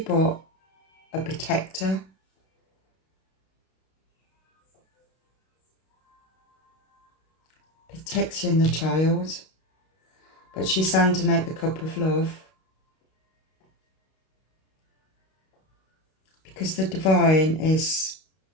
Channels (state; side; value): late; right; 32 ms